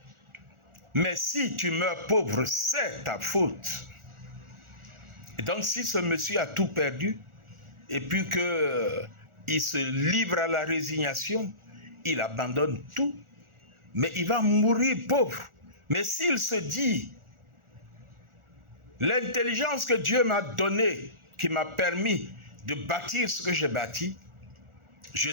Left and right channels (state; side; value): late; left; 1.4 ms